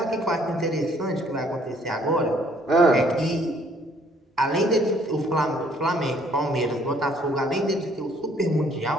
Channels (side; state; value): both; normal; correlation 0.62